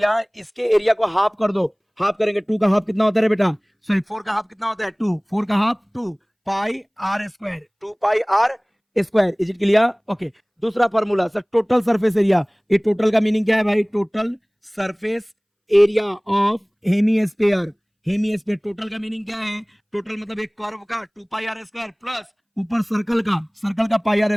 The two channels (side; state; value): both; identical; correlation 1.00